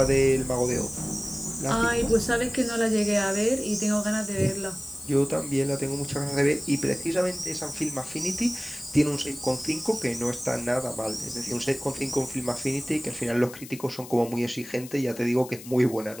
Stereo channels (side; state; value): left; noise; hiss, 16 dB below the sound